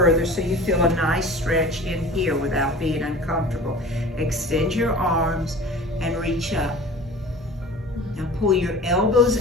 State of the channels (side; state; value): both; normal; correlation 0.40